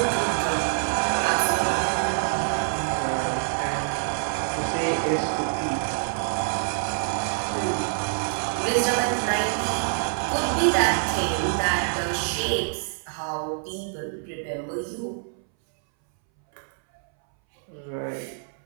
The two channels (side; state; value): left; silent; 61 dB below the other